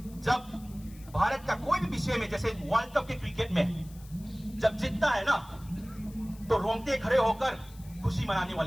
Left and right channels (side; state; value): left; noise; hiss, 23 dB below the sound